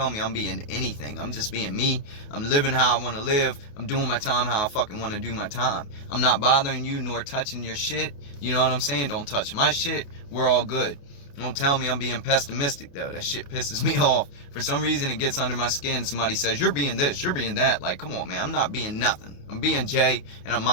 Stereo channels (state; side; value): late; right; 28 ms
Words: me I'm being anything. I'm just being me. I'm living how I want to live. I'm doing my time how I fucking want to do my time. I'm not bothering you nor touching your shit. You know what I'm saying? Don't touch my shit. We're all good. Don't tell me I'm being pessimistic, though. That shit pisses me off. For some reason, it gets under my skin. Somebody says, you're being this, you're being that. Like, come on, man. I'm not being nothing. I'm being Jay, and I'm